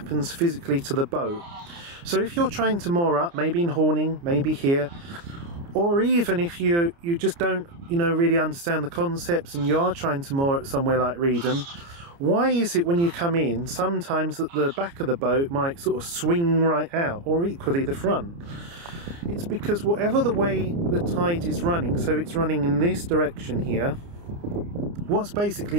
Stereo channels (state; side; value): late; left; 29 ms